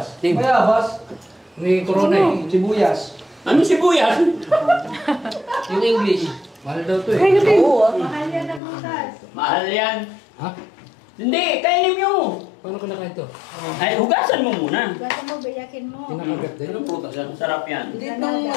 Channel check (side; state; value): right; drops out; at 8.6 s